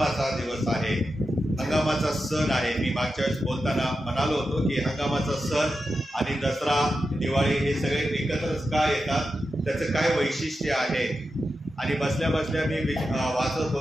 दिवस आहे, हंगामाचा सण आहे. मी मागच्या वेळेस बोलताना म्हणालो होतो की हंगामाचा सण आणि दसरा, दिवाळी हे सगळे एकत्रच का येतात, त्याचं काय वैशिष्ट्य आहे. आणि बसल्या बसल्या मी वाचत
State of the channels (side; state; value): both; normal; correlation 0.90